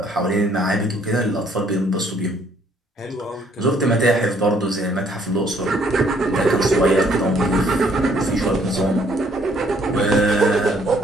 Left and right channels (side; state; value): both; normal; correlation 0.64